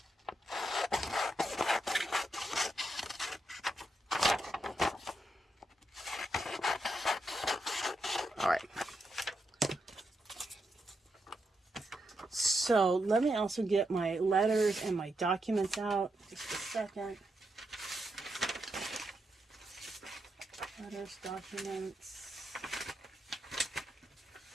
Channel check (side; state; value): both; normal; correlation 0.84